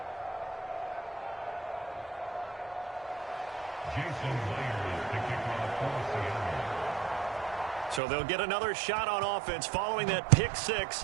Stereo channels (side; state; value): left; drops out; at 8.0 s